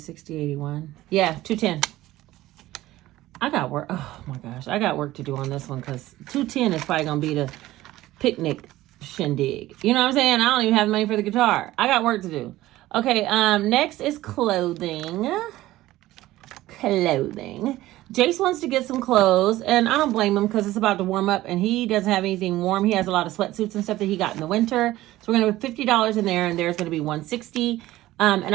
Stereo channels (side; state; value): left; quieter; 16.2 dB